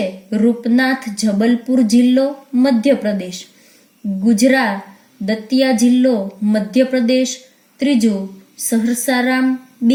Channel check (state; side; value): identical; both; correlation 1.00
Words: રૂપનાથ જબલપુર જિલ્લો મધ્યપ્રદેશ, ગુજરા દતિયા જિલ્લો મધ્યપ્રદેશ, ત્રીજું સહરસારામ